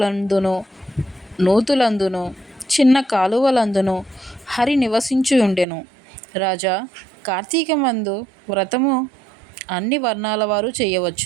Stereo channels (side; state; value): left; drops out; at 5.7 s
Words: నూతులందును చిన్న కాలువలందును హరి నివసించి ఉండెను. రాజా, కార్తీకమందు వ్రతము అన్ని వర్ణాల వారు